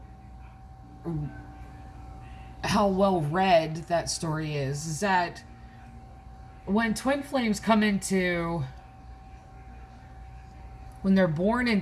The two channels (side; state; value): both; identical; correlation 1.00